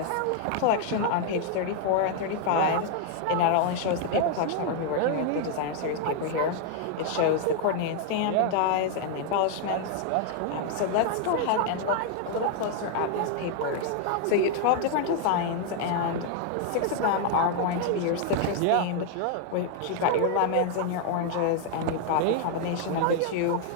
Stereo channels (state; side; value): different; both; correlation 0.00